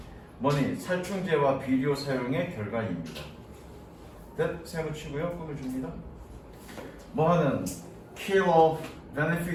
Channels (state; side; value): identical; both; correlation 1.00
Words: 뭐니? 살충제와 비료 사용의 결과입니다. 세워치고요. 꾸며줍니다. 뭐하는? kill off